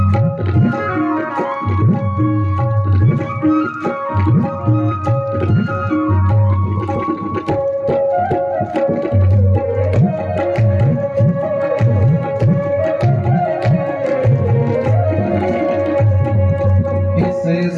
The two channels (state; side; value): identical; both; correlation 1.00